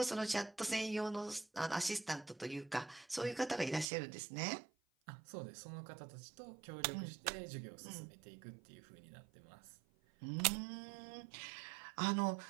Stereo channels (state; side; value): drops out; left; at 3.9 s